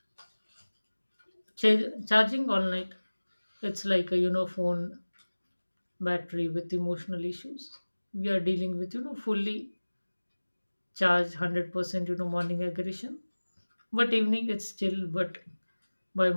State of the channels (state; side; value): inverted; both; correlation -1.00